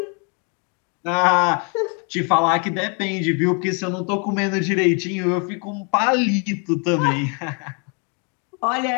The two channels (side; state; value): right; quieter; 36.6 dB